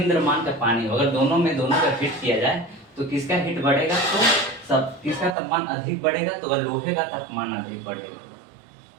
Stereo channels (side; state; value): left; drops out; at 5.4 s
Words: द्रव्यमान का पानी, अगर दोनों का हिट किया जाए तो किसका हिट बढ़ेगा, तो सब किसका तापमान अधिक बढ़ेगा, तो लोहे का तापमान अधिक बढ़ेगा,